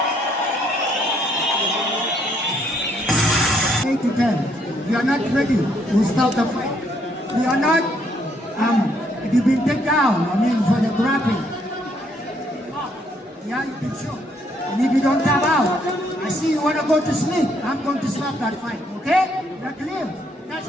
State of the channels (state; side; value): normal; both; correlation 0.70